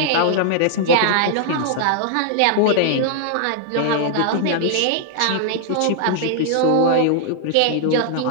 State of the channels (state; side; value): different; both; correlation -0.01